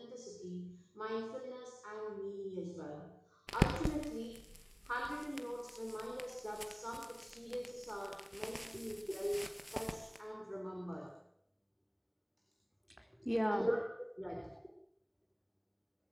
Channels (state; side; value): identical; both; correlation 1.00